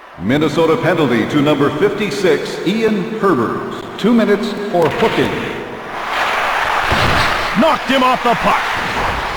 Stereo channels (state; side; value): identical; both; correlation 1.00